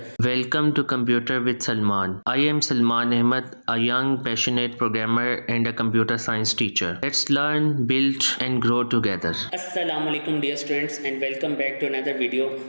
Welcome to Computer with Salman. I am Salman Ahmed, a young, passionate programmer and a computer science teacher. Let's learn, build and grow together. अस्सलाम वालेकुम dear students and welcome back to another video.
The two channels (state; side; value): inverted; both; correlation -1.00